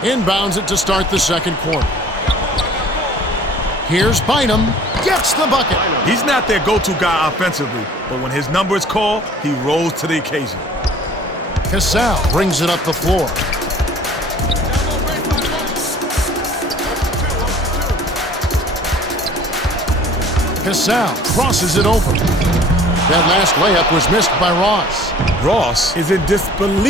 inbounds it to start the second quarter. Here's Bynum, gets the bucket. He's not their go-to guy offensively, but when his number is called, he rolls to the occasion. Cassell brings it up the floor. Cassell crosses it over. That last layup was missed by Ross. Ross is in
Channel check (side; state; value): both; normal; correlation 0.50